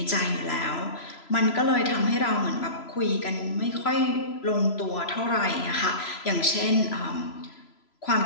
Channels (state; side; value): late; right; 3.0 ms